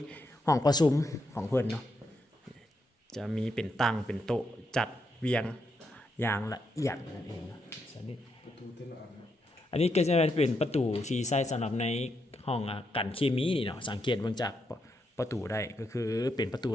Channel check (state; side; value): normal; both; correlation 0.81